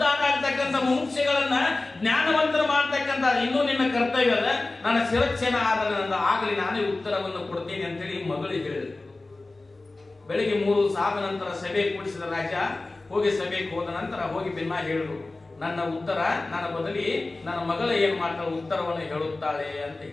ಆಗ್ತಕ್ಕಂಥ ಮುಮುಕ್ಷೆಗಳನ್ನ ಜ್ಞಾನವಂತರ ಮಾಡ್ತಕ್ಕಂಥ ಇನ್ನೂ ನಿನ್ನ ಕರ್ತವ್ಯ ಅದ. ನನ್ನ ಶಿರಚ್ಛೇದನ ಆದ ಆಗಲಿ, ನಾನೇ ಉತ್ತರವನ್ನು ಕೊಡ್ತೀನಿ ಅಂತೇಳಿ ಮಗಳಿಗೆ ಹೇಳಿದ್ರು. ಬೆಳಿಗ್ಗೆ 3 ಸಾದ ನಂತರ ಸಭೆ ಕೂಡಿಸಿದ ರಾಜ ಹೋಗಿ ಸಭೆಗೆ ಹೋದ ನಂತರ ಹೋಗಿ ಭಿನ್ನ ಹೇಳಿದ್ರು, ನನ್ನ ಉತ್ತರ ನನ್ನ ಬದಲಿ ನನ್ನ ಮಗಳು ಏನ್ ಮಾಡ್ತಾಳೆ ಉತ್ತರವನ್ನು ಹೇಳುತ್ತಾಳೆ ಅಂತ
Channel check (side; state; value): right; quieter; 3.1 dB